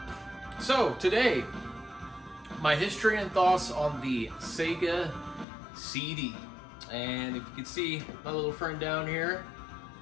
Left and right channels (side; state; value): right; drops out; at 5.5 s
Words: So today, my history and thoughts on the Sega CD. And if you can see my little friend down here,